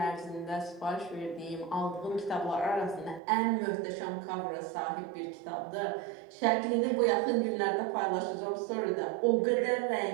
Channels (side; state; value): left; drops out; at 3.2 s